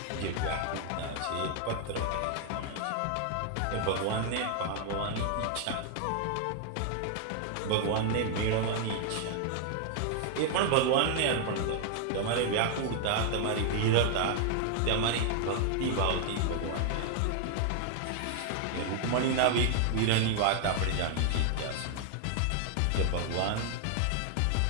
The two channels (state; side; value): different; both; correlation 0.00